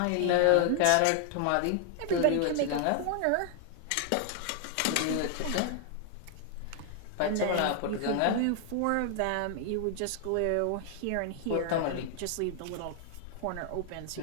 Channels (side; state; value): both; different; correlation 0.00